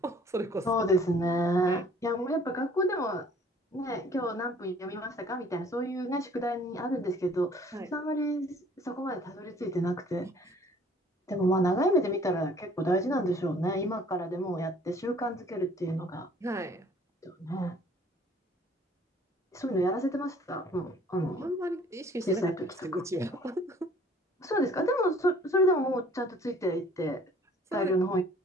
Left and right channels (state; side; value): normal; both; correlation 0.55